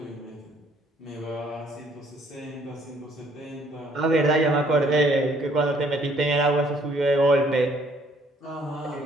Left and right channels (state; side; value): normal; both; correlation 0.63